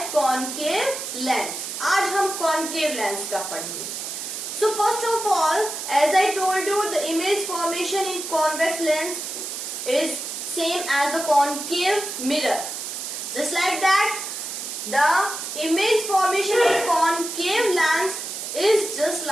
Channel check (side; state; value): right; noise; hiss, 6 dB below the sound